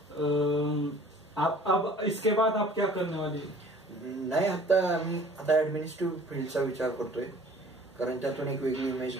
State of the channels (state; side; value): normal; both; correlation 0.50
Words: आप अब इसके बाद आप क्या करने वाले? नाही, आता ऍडमिनिस्ट्रेटिव्ह फील्डचा विचार करतोय. कारण त्यातून एक वेगळी इमेज